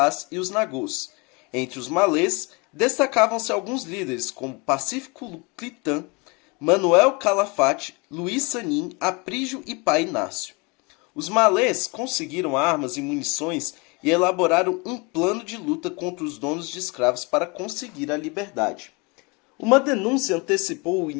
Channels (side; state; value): right; quieter; 28.7 dB